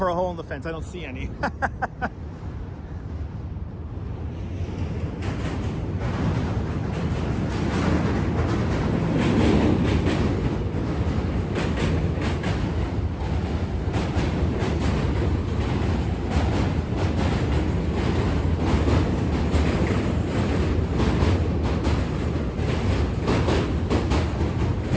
a hole in the fence, I don't see any.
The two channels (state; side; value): identical; both; correlation 1.00